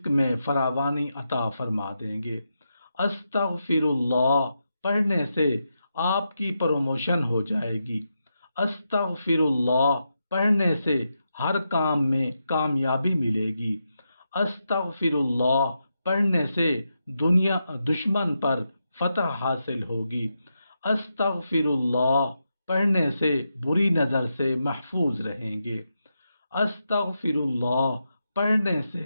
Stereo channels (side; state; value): both; inverted; correlation -0.86